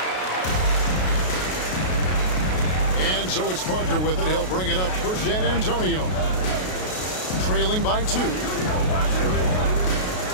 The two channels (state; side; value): late; right; 33 ms